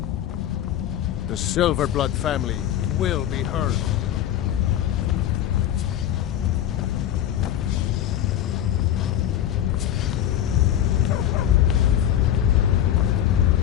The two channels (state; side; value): quieter; right; 11.2 dB